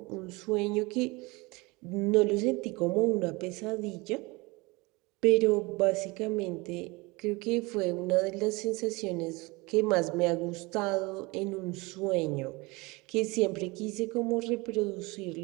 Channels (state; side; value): quieter; left; 24.5 dB